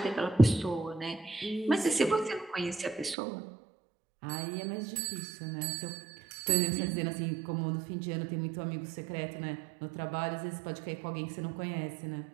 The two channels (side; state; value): left; drops out; at 3.2 s